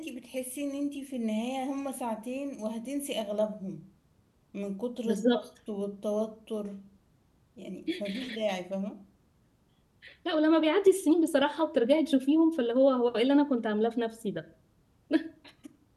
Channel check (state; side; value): identical; both; correlation 1.00